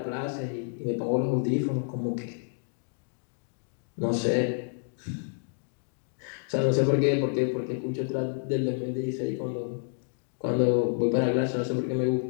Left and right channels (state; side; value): silent; right; digital silence